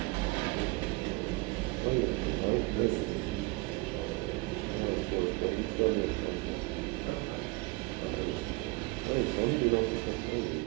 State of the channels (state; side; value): quieter; left; 24.4 dB